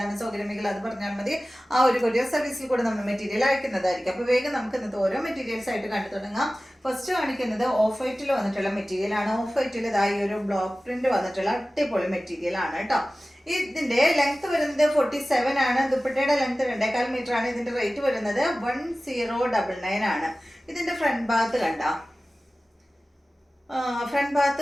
സൗകര്യമെങ്കിൽ അത് പറഞ്ഞാൽ മതി. ആ ഒരു കൊറിയർ സർവീസിൽ കൂടെ നമ്മൾ മെറ്റീരിയൽ അയക്കുന്നതായിരിക്കും. അപ്പോൾ വേഗം നമുക്ക് ഇന്നത്തെ ഓരോ മെറ്റീരിയൽസ് ആയിട്ട് കണ്ടു തുടങ്ങാം. ഫസ്റ്റ് കാണിക്കുന്നത് ഓഫ് വൈറ്റിൽ വന്നിട്ടുള്ള മെറ്റീരിയൽ ആണ്. ഓഫ് വൈറ്റിൽ ഇതായി ഒരു ബ്ലോക്ക് പ്രിന്റ് വന്നിട്ടുള്ള അടിപൊളി മെറ്റീരിയൽ ആണ് കേട്ടോ. ഇതിന്റെ ലെങ്ത് വരുന്നത് 47 ആണ്. ദുപ്പട്ടയുടെ ലെങ്ത് 2.25 മീറ്റർ ആണ്. ഇതിന്റെ റേറ്റ് വരുന്നത് 1099 ആണ്. ഇതിന്റെ ഫ്രണ്ട് ഭാഗത്ത് കണ്ട ഫ്രണ്ട് ഭാഗത്ത്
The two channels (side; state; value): both; normal; correlation 0.96